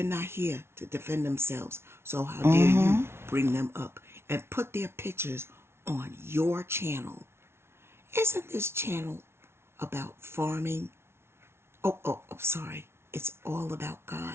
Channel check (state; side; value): late; left; 0.12 ms